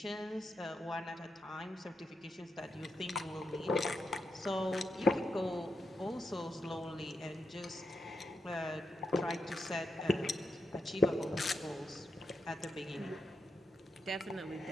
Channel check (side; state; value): both; normal; correlation 0.85